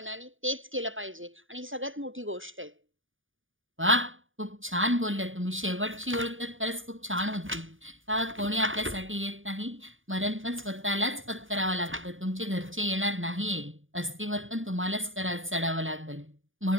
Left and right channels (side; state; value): left; late; 0.57 ms